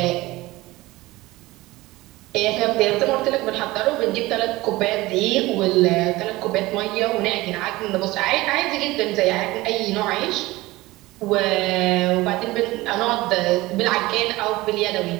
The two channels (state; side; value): quieter; left; 19.5 dB